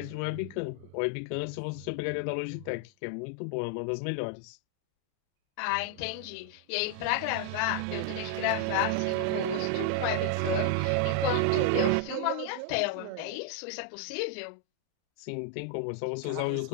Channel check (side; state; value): both; different; correlation 0.00